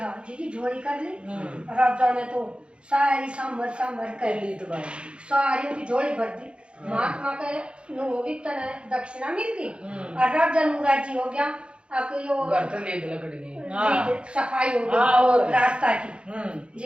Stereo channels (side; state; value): left; late; 0.057 ms